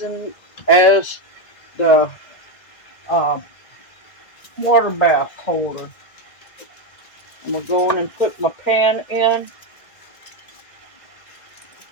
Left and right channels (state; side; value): late; right; 1.8 ms